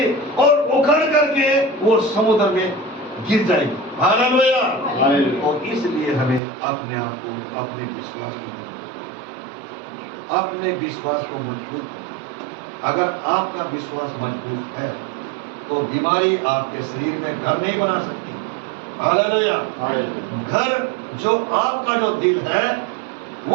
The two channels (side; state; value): left; drops out; at 6.4 s